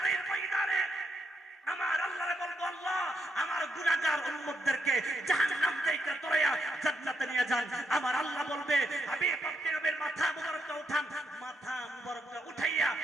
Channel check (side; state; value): both; normal; correlation 0.80